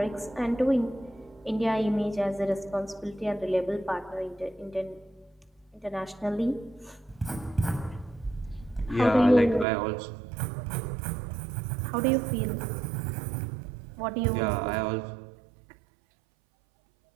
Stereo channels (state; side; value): drops out; left; at 9.7 s